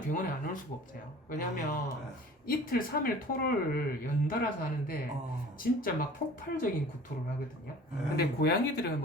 병원에 안 올 수가 없어요. 왜냐하면 이틀 3일 토를 연달아서 하는데 진짜 막 폭발적인 구토를 하거든요. 근데 고양이들은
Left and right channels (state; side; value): normal; both; correlation 0.45